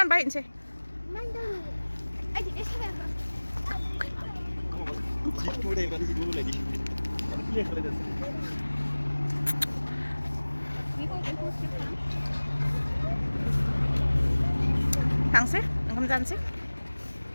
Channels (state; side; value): inverted; both; correlation -1.00